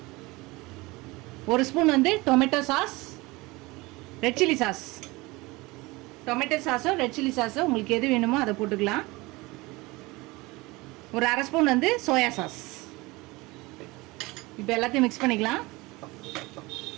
ஒரு spoon tomato sauce, red chilli sauce. Tomato சாஸோ ரெட் சில்லி சாஸோ உங்களுக்கு எது வேணுமோ அதை போட்டுக்கலாம். ஒரு 1/2 ஸ்பூன் சோயா சாஸ். இப்போ எல்லாத்தையும் மிக்ஸ் பண்ணிக்கலாம்.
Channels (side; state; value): left; quieter; 22.6 dB